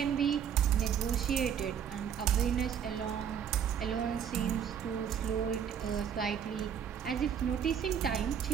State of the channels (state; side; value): quieter; left; 8.2 dB